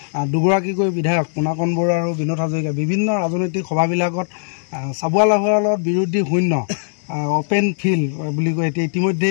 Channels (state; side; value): silent; right; digital silence